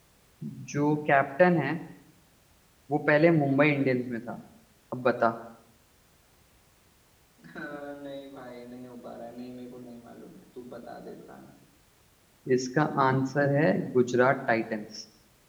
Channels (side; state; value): both; identical; correlation 1.00